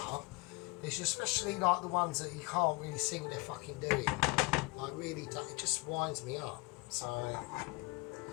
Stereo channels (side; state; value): right; quieter; 25.6 dB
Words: It's especially like the ones that you can't really see what they're fucking doing. Like really, it just winds me up. So,